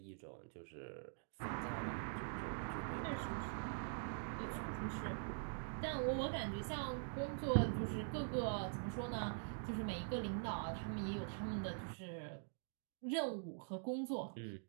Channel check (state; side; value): silent; left; digital silence